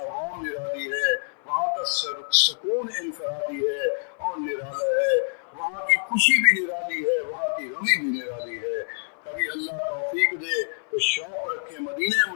نرالی ہے، وہاں کا سکون انفرادی ہے اور نرالا ہے، وہاں کی خوشی بھی نرالی ہے، وہاں کی غمی بھی نرالی ہے۔ کبھی اللہ توفیق دے تو شوق رکھے مدینہ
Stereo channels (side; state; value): right; silent; 57 dB below the other